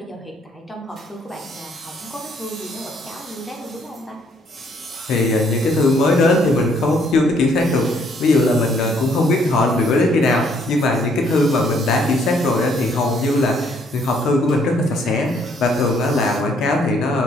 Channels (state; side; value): normal; both; correlation 0.67